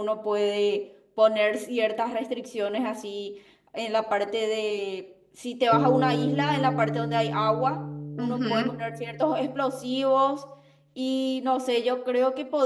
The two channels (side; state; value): both; identical; correlation 1.00